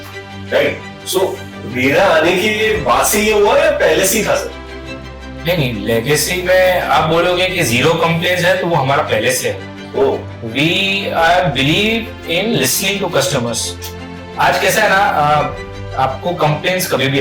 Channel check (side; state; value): both; identical; correlation 1.00